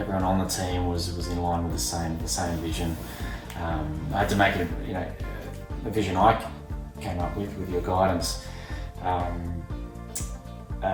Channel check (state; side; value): identical; both; correlation 1.00